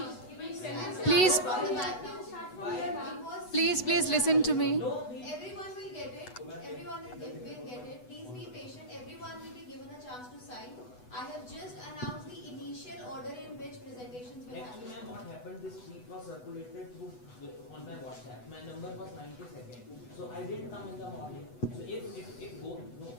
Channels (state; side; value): late; right; 8.1 ms